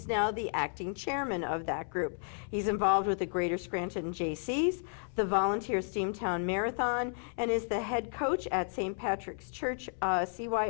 now the acting chairman of that group. He's involved with the Greater Scranton JCs, the Volunteer Steamtown Marathon, and is the head coach at St. Patrick's Church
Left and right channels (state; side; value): silent; right; 56 dB below the other